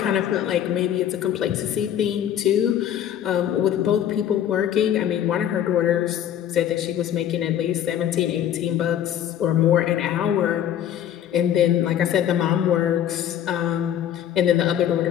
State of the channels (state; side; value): quieter; right; 10.3 dB